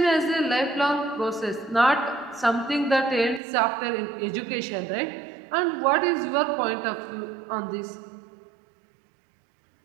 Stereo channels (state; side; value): drops out; left; at 3.4 s